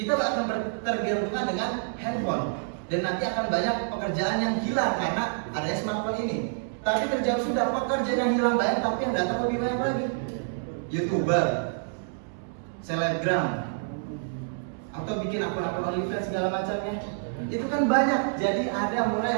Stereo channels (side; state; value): left; silent; 60 dB below the other